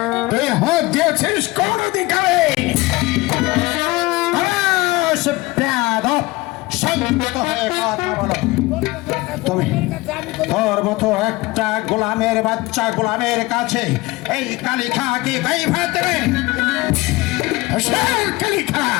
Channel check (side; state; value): right; quieter; 21.1 dB